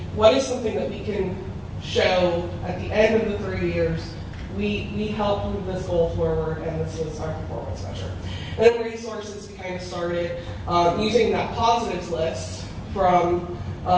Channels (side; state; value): both; identical; correlation 1.00